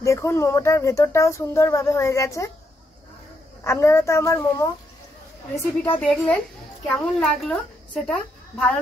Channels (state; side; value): normal; both; correlation 0.78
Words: দেখুন মোমোটার ভেতরটাও সুন্দরভাবে হয়ে গেছে। আপনারা তো আমার মোমো রেসিপিটা দেখলেন, কেমন লাগলো সেটা ভালো